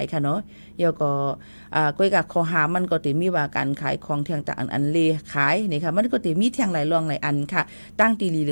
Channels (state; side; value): inverted; both; correlation -1.00